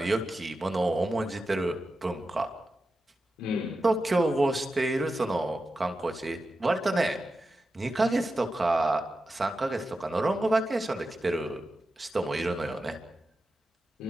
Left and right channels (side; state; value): both; normal; correlation 0.91